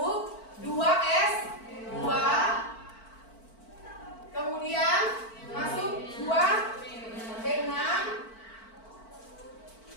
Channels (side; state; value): right; late; 4.5 ms